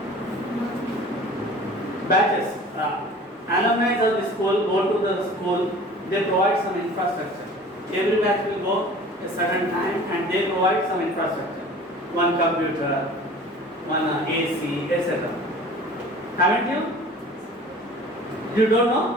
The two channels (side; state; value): both; normal; correlation 0.44